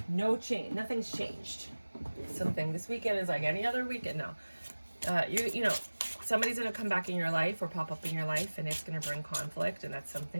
no change. Nothing's changed. Something. This weekend is like any other weekend. No. You know, somebody's going to come back in your life or pop up in your life, and it's going to bring conflict, and that's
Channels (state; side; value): inverted; both; correlation -1.00